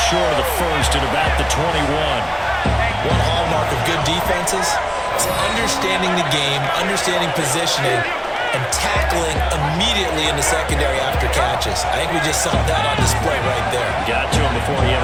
of the first at about the 21. One hallmark of good defenses is understanding the game, understanding positioning, and tackling immediately in the secondary after catches. I think we just saw that on display right there. Got to him before he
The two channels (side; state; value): both; identical; correlation 1.00